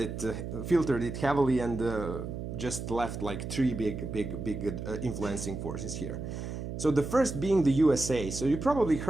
it heavily and just left like three big influencing forces here. So the first being the USA. So you probably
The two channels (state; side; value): noise; right; hum, 6 dB below the sound